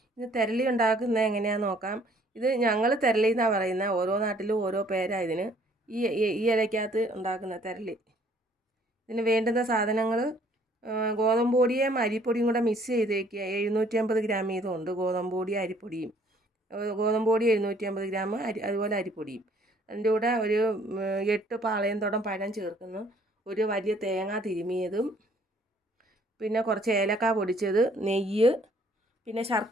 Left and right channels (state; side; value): normal; both; correlation 0.61